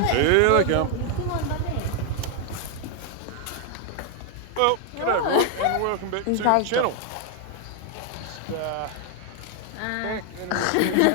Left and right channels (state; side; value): different; both; correlation 0.01